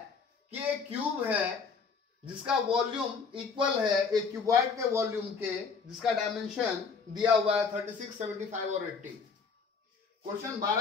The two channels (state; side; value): quieter; right; 5.3 dB